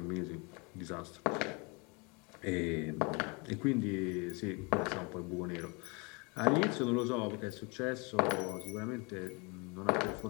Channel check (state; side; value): quieter; right; 30.0 dB